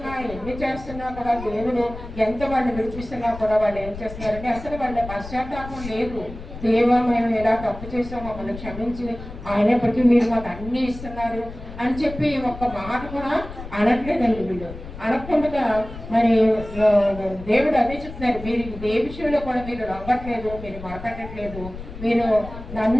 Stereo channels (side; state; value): left; noise; rumble, 12 dB below the sound